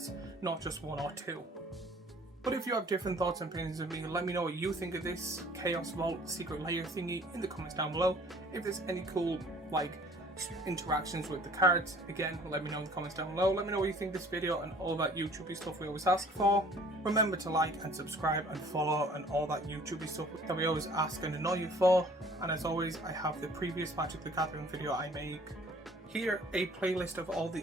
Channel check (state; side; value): normal; both; correlation 0.53